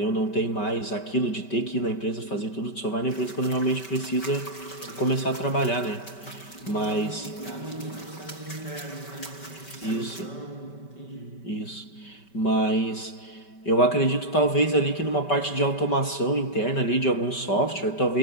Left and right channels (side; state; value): right; late; 5.2 ms